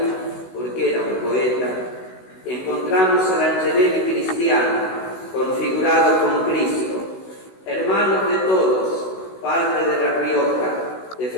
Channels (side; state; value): right; late; 16 ms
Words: porque era un poeta, encontramos al Angelelli cristiano, configurado con Cristo, hermano de todos, padre de La Rioja,